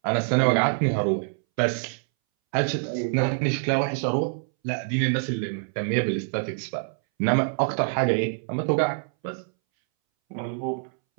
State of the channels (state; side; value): silent; left; 61 dB below the other